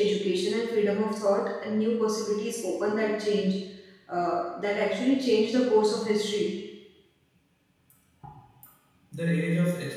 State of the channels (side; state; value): both; identical; correlation 1.00